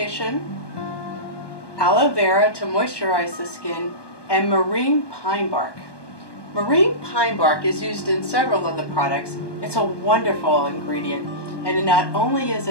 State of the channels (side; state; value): right; late; 1.2 ms